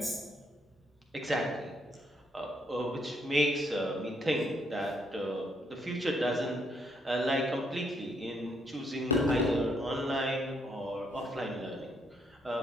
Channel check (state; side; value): normal; both; correlation 0.73